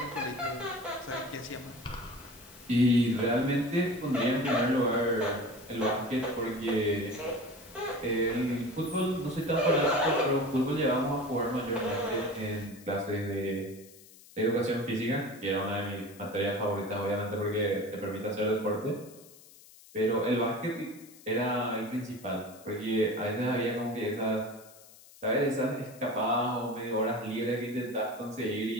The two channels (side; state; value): left; noise; hiss, 22 dB below the sound